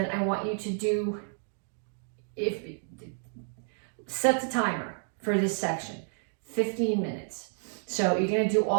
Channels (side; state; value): left; silent; digital silence